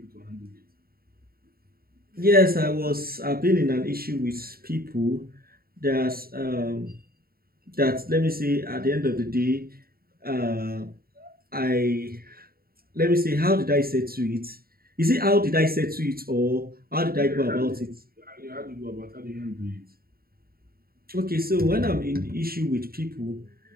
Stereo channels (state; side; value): late; left; 0.43 ms